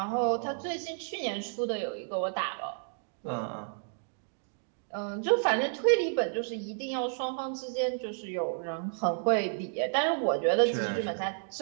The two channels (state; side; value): silent; left; digital silence